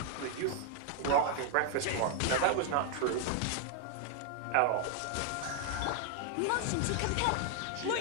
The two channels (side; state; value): both; different; correlation 0.00